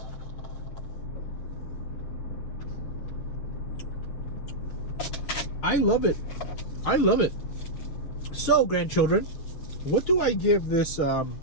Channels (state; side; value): late; right; 6.4 ms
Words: I love it. I love it. So, grandchildren, what do I give this